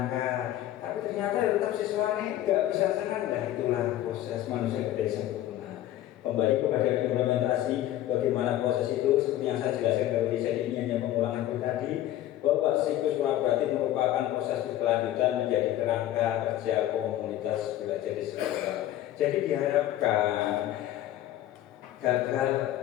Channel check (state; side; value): quieter; right; 13.3 dB